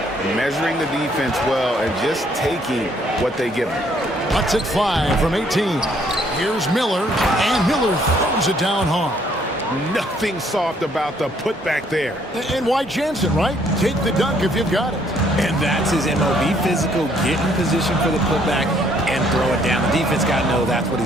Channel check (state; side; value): normal; both; correlation 0.66